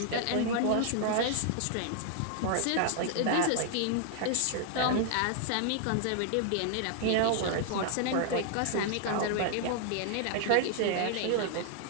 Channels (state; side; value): different; both; correlation -0.01